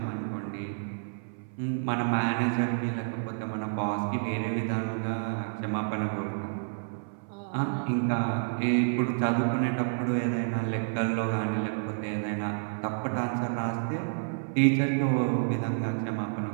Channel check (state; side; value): silent; left; 58 dB below the other